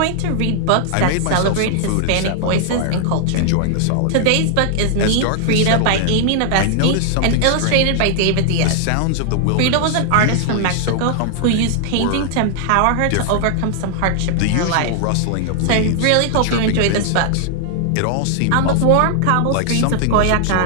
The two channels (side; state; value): both; different; correlation 0.00